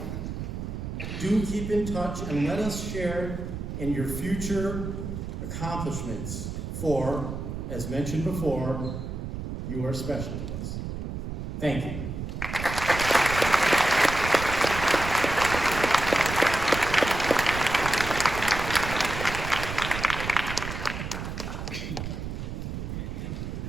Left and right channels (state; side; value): noise; right; rumble, 6 dB below the sound